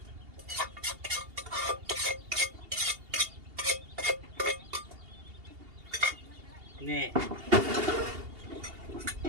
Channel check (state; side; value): late; left; 2.8 ms